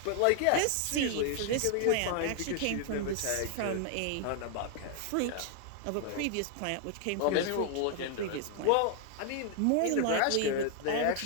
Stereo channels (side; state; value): both; different; correlation 0.00